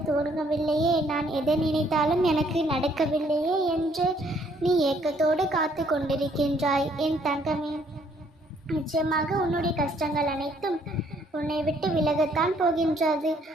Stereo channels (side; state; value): both; normal; correlation 0.65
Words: தோணவில்லையே, நான் எதை நினைத்தாலும் எனக்கு நடக்கவில்லையே என்று நீ ஏக்கத்தோடு காத்து கொண்டிருக்கின்றாய். என் தங்கமே, நிச்சயமாக உன்னுடைய கஷ்டங்கள் அனைத்தும் உன்னை விட்டு விலகத்தான் போகின்றது.